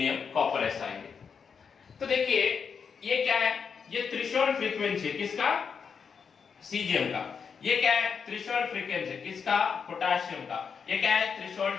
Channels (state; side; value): quieter; right; 6.3 dB